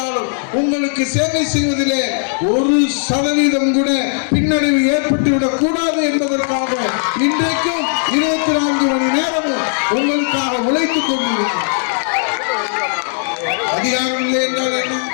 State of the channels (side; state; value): right; silent; 68 dB below the other